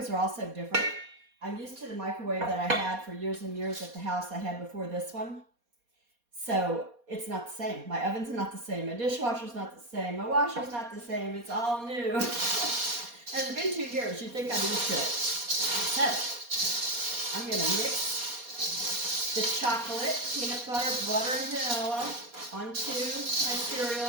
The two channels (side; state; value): left; late; 4.2 ms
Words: are also different. I'm used to the microwave that I had for years and years at the house I had before this one. So it's not the same. My oven's not the same. My dishwasher's not the same. My washer's not the same. It's all new. And it's been 2 years. You'd think I'm used to it. So I'm going to mix the chocolate, peanut butter, butter, and vanilla onto my